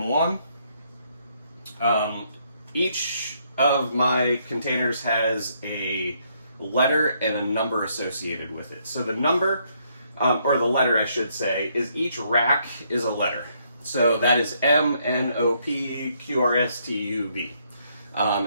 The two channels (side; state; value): both; inverted; correlation -0.72